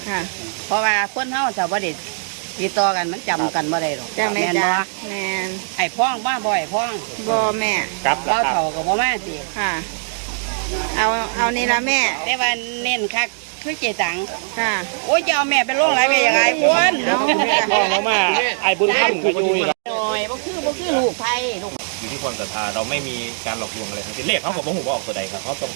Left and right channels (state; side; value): silent; left; digital silence